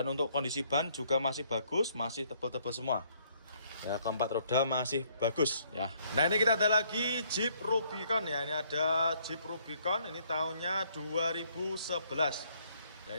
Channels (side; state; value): both; inverted; correlation -0.66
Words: untuk kondisi ban juga masih bagus, masih tebal-tebal semua. Ya, keempat roda masih bagus ya. Nah ini kita ada lagi Jeep Rubicon ya. Ini ada Jeep Rubicon, ini tahunnya 2011. Ya